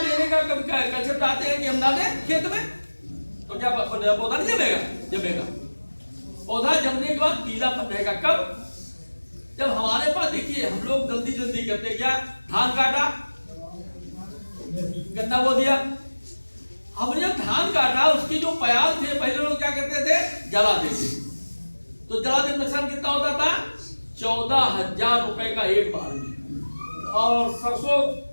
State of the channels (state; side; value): inverted; both; correlation -1.00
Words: का कब कंसेप्ट आते हैं कि हम डालें खेत में, तो क्या पौधा नहीं जमेगा? जमेगा। पौधा जमने के बाद पीलापन रहेगा कब? जब हमारे पास, देखिए हम लोग जल्दी जल्दी करते क्या, धान काटा, गन्ना बो दिया। हमने जब धान काटा, उसकी जो प्याज थे पहले लोग क्या करते थे? जला देते। तो जला देने नुकसान कितना होता था? 14,000 रुपए का एक बार में। और सरसों